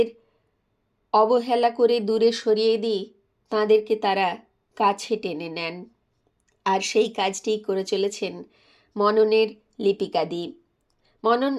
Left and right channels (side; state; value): both; identical; correlation 1.00